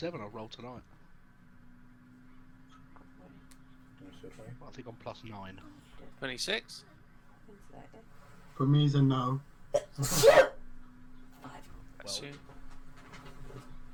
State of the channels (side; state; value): both; identical; correlation 1.00